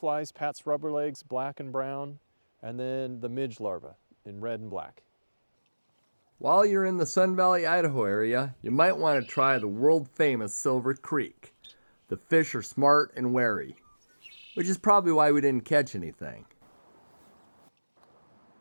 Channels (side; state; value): both; inverted; correlation -1.00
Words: Pat's rubber legs, black and brown, and then the midge larva in red and black. While you're in the Sun Valley, Idaho area, you might want to try the world-famous Silver Creek. The fish are smart and wary, which is probably why we didn't catch anything.